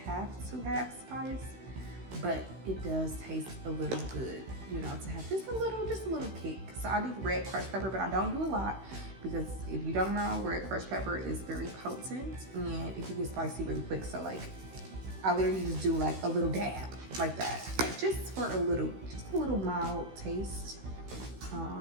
have to have spice, but it does taste a little good, you know, to have just a little kick. So I do red crushed pepper, but I don't do a lot because if you don't know, red crushed pepper is very potent and it can get spicy really quick. So like, I literally just do like a little dab like that, like just for a little mild taste.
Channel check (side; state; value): left; late; 16 ms